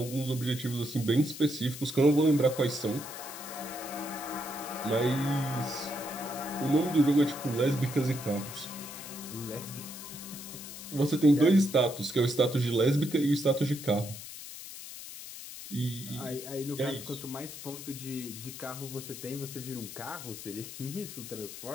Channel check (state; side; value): noise; left; hiss, 11 dB below the sound